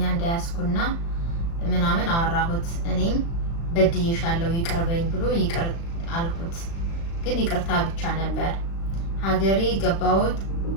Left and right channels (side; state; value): right; late; 36 ms